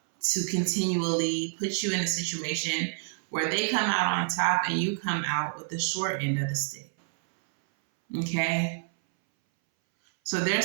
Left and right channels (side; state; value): left; silent; 59 dB below the other